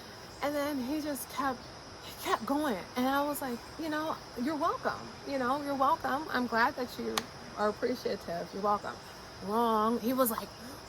and then he just kept going, and I was like, you know, you're welcome. I'm glad that you are appreciative. You're welcome. Wrong. He was like,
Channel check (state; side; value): identical; both; correlation 1.00